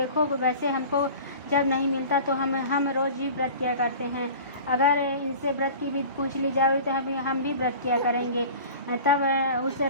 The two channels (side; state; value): both; inverted; correlation -0.39